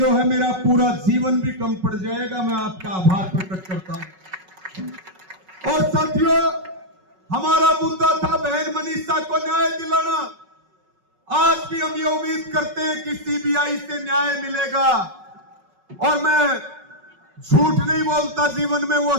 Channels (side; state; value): left; late; 5.4 ms